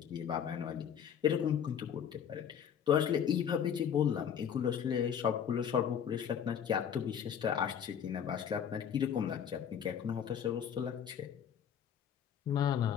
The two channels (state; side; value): quieter; right; 8.4 dB